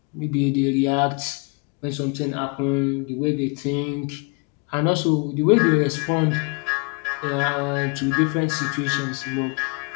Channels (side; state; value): right; quieter; 32.7 dB